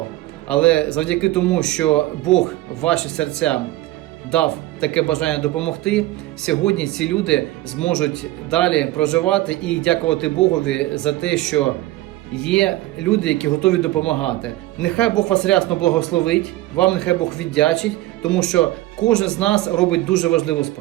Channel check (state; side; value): quieter; left; 17.1 dB